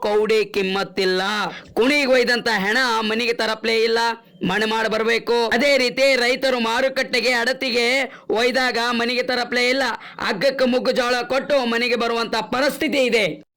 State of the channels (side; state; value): both; identical; correlation 1.00